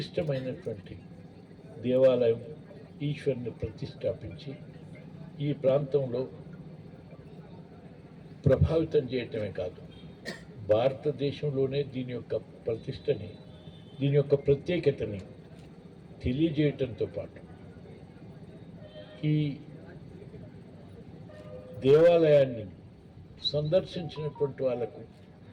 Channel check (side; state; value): both; identical; correlation 1.00